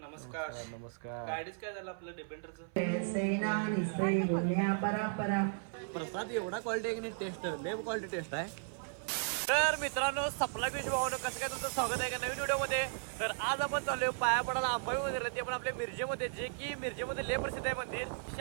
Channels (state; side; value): silent; left; 54 dB below the other